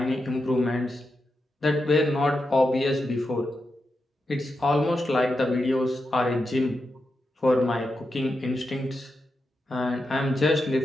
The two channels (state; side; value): normal; both; correlation 0.87